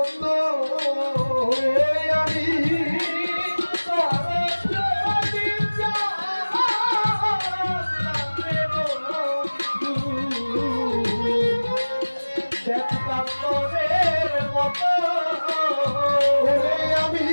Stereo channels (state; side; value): inverted; both; correlation -1.00